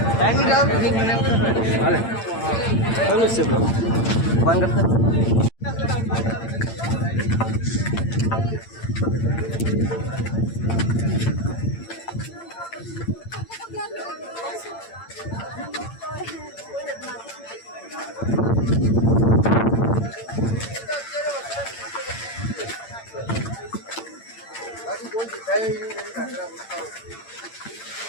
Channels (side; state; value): right; late; 8.8 ms